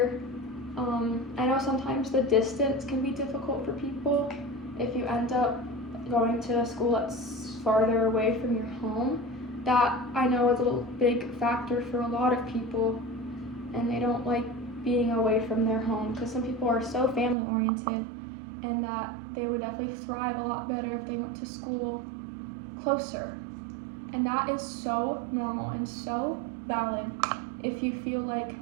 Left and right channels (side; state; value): left; drops out; at 17.4 s